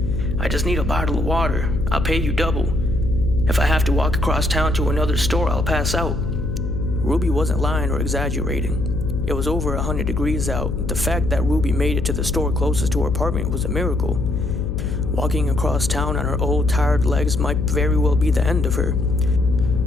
"I just need a bottle of water. I'll pay you double. If I have to walk across town to another store, I'll pass out." Ruby wasn't lying or exaggerating. It was over 100 degrees out. The fact that Ruby made it to the store closest to her apartment was a miracle. Walking across town on her old, tired legs might very well be the end of her.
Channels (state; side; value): noise; left; hum, 3 dB below the sound